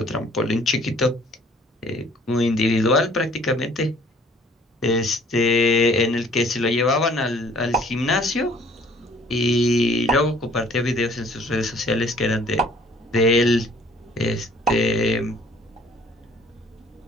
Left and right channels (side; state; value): both; normal; correlation 0.56